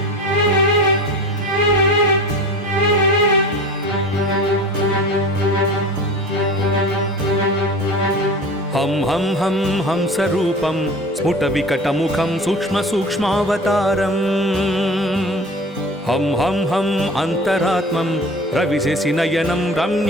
हं हं हं हंसरूपं स्फुटविकटमुखं सूक्ष्मसूक्ष्मावतारम् हं हं हं अन्तरात्मं रविशशिनयनं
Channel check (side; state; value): both; normal; correlation 0.37